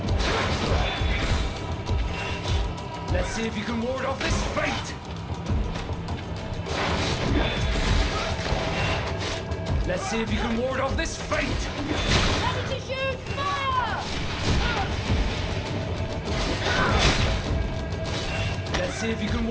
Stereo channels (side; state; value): both; identical; correlation 1.00